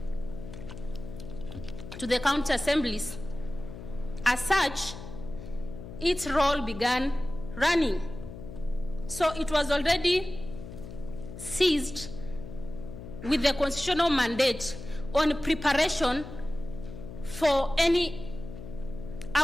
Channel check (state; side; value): noise; left; hum, 12 dB below the sound